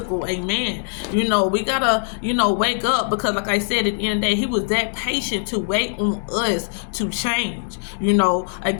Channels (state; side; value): silent; right; 65 dB below the other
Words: amen. We gotta, wake up, because like I said, at the end of the day, he was that patient to wait on us to change.